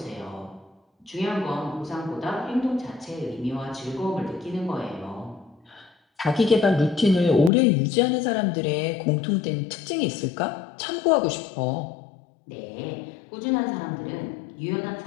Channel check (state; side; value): drops out; right; at 7.5 s